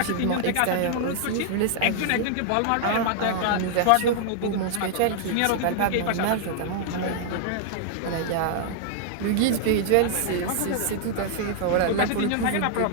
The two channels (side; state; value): both; different; correlation -0.01